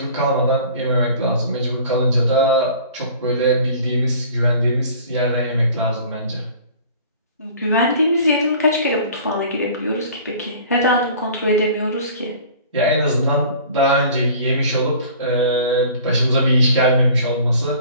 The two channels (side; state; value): both; inverted; correlation -0.46